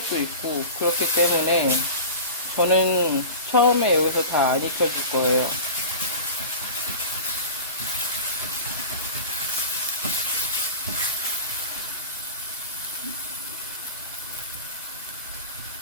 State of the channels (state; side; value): inverted; both; correlation -0.34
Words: 있고 그렇기 때문에 저는 처음에 여기서 다 안 익혀줄 거예요.